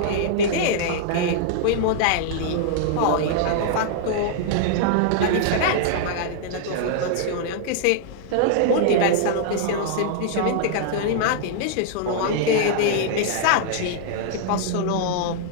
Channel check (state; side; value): different; both; correlation -0.01